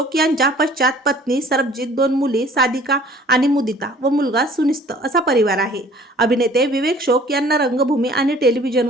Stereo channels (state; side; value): normal; both; correlation 0.52